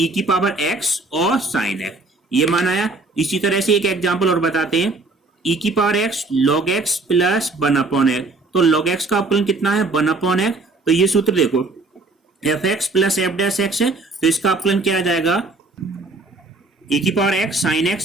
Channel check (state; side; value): quieter; left; 3.3 dB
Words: की पावर x और sin x, ये मान आया। इसी तरह से एक एग्जांपल और बताते हैं, e की power x log x plus 1/x, तो log x का अवकलन कितना है 1/x, तो ये सूत्र देखो fx plus f dash x है, तो इसका अवकलन क्या आ जाएगा e की power x sin